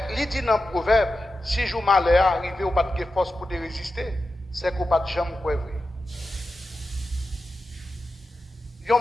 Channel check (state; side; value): normal; both; correlation 0.91